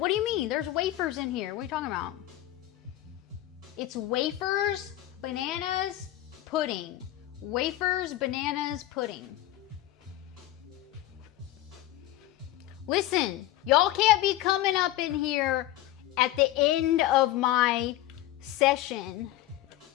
do you mean? There's wafers in here. What are you talking about? It's wafers, bananas, pudding. Wafers, bananas, pudding. Listen, y'all can't be coming up in here at the end of my session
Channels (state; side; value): quieter; right; 14.7 dB